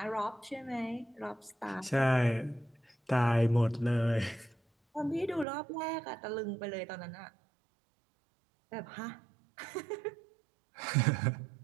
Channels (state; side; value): drops out; left; at 5.5 s